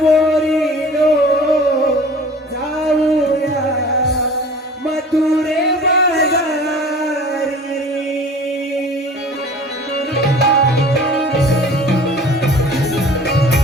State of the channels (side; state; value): both; normal; correlation 0.44